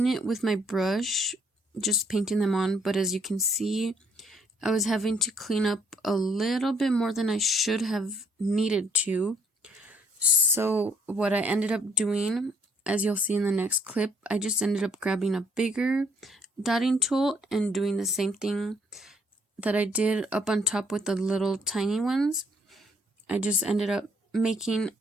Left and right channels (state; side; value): normal; both; correlation 0.66